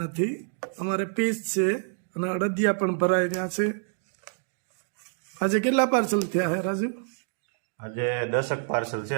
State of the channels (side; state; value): left; silent; digital silence